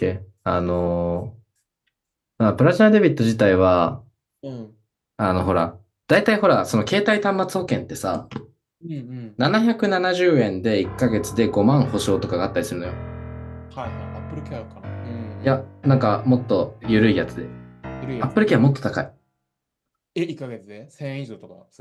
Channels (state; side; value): identical; both; correlation 1.00